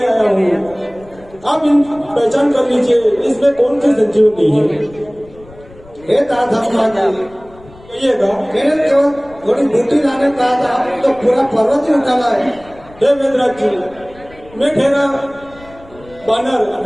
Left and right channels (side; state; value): left; noise; rumble, 23 dB below the sound